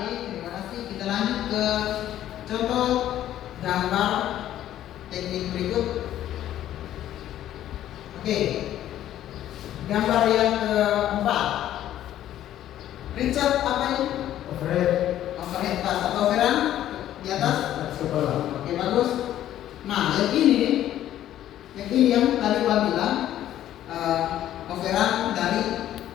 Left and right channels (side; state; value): right; quieter; 12.2 dB